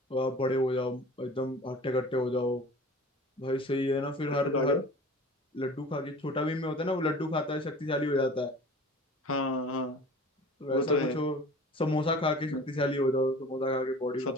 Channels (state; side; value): normal; both; correlation 0.42